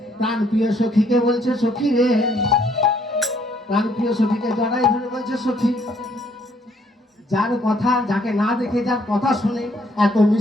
প্রাণ প্রিয় সখীকে বলছে, সখী রে, প্রাণ প্রিয় সখীকে জড়াই ধরে বলছে, সখী, যার কথা, যাকে না দেখে যার কথা শুনে এত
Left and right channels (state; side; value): normal; both; correlation 0.67